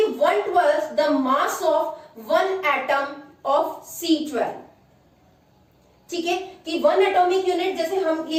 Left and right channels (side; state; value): both; identical; correlation 1.00